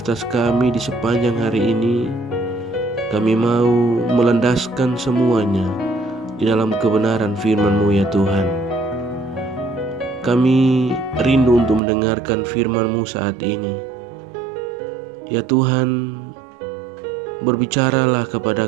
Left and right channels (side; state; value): left; drops out; at 11.8 s